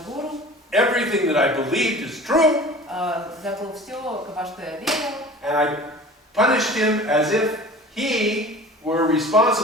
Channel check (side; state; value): both; normal; correlation 0.41